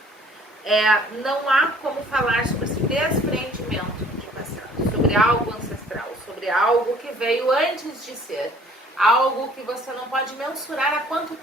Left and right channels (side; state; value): both; normal; correlation 0.55